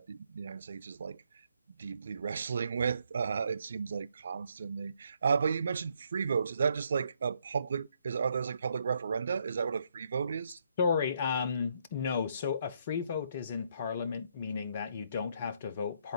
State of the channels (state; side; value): inverted; both; correlation -0.73